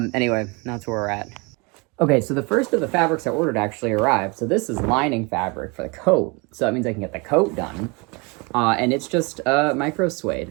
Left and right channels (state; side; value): quieter; left; 28.9 dB